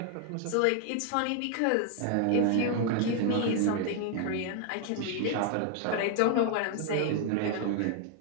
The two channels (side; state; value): both; different; correlation 0.00